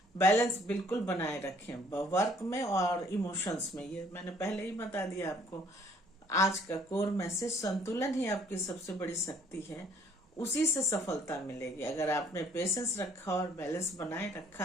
बैलेंस बिल्कुल बनाए रखें वर्क में और इमोशंस में। ये मैंने पहले ही बता दिया आपको। आज का कोर मैसेज, संतुलन ही आपकी सबसे बड़ी शक्ति है, उसी से सफलता मिलेगी। अगर आपने पेशेंस रखा और बैलेंस बनाए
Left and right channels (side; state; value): both; normal; correlation 0.61